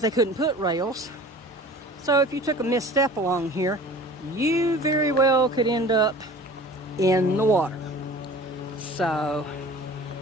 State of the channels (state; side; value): normal; both; correlation 0.42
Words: they couldn't put rails. So if you took a misstep along here, you very well could end up in the water. So,